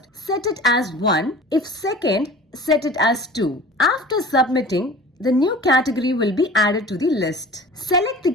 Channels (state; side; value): normal; both; correlation 0.41